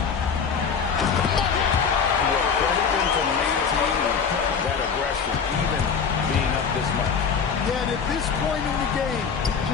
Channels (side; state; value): right; quieter; 6.2 dB